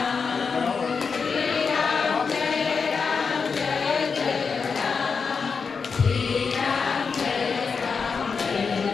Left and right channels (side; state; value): right; quieter; 5.4 dB